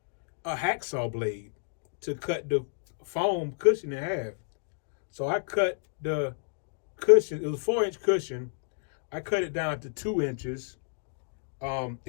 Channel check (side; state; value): right; silent; digital silence